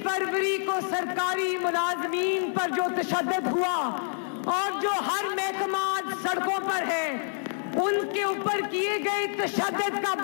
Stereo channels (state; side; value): silent; right; 60 dB below the other